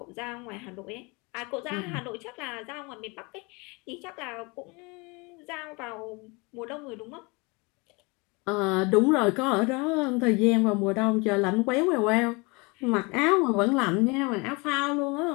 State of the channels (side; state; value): right; quieter; 28.0 dB